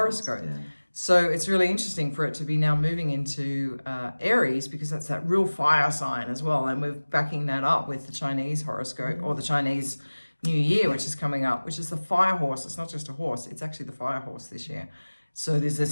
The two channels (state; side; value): inverted; both; correlation -1.00